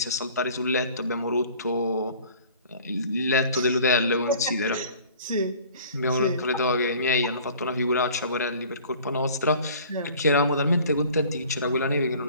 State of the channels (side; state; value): both; inverted; correlation -0.48